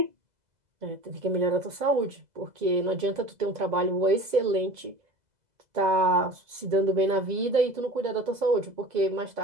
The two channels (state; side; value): late; left; 2.0 ms